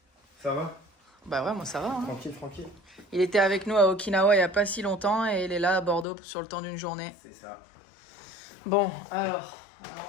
Ça va? Bah ouais, moi ça va. Hein. Tranquille, tranquille. Il était avec nous à Okinawa il n'y a pas si longtemps et il est là à Bordeaux sur le temps d'une journée. C'est ça. Bon, alors, on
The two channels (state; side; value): drops out; right; at 6.1 s